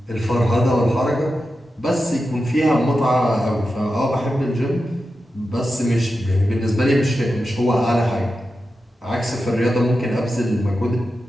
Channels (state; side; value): normal; both; correlation 0.90